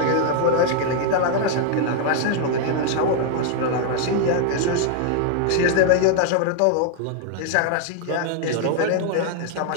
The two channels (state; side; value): different; both; correlation 0.00